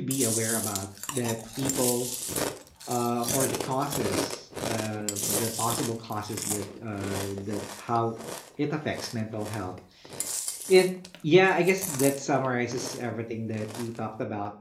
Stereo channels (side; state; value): both; identical; correlation 1.00